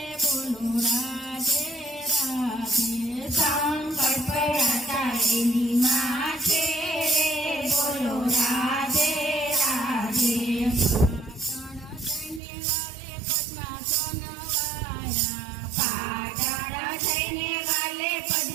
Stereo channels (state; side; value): drops out; left; at 12.4 s